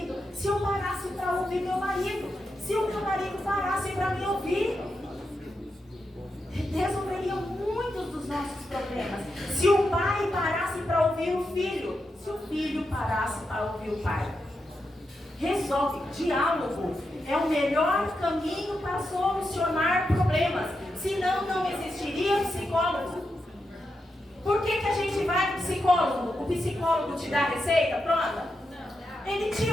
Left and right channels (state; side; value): normal; both; correlation 0.86